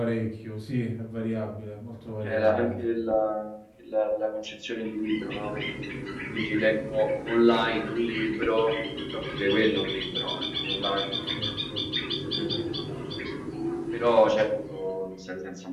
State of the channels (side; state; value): both; identical; correlation 1.00